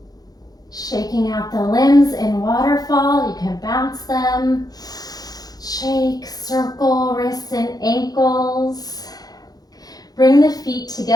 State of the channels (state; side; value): late; right; 0.19 ms